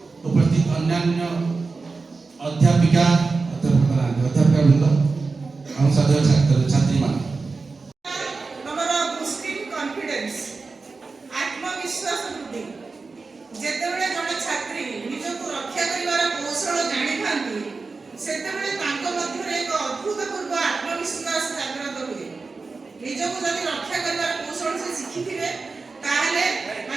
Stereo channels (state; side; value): quieter; left; 4.1 dB